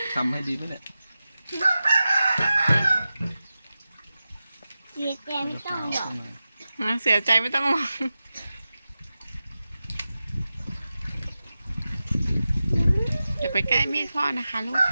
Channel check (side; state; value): both; inverted; correlation -0.94